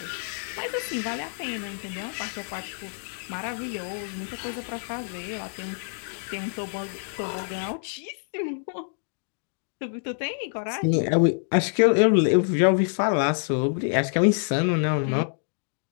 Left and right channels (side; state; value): right; silent; digital silence